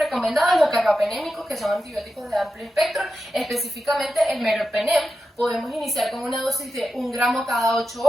Los carbapenémicos, que son antibióticos de amplio espectro, específicamente el meropenem. Podemos iniciar con una dosis de 1 gramo cada 8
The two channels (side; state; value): both; normal; correlation 0.90